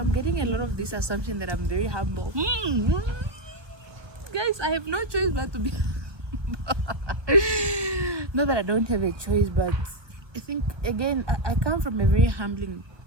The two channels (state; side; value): late; left; 1.3 ms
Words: getting a lot of this assumption that I'm very humble. Guys, I have no choice but to be not that I don't have a choice, but I think again I come from a very humbling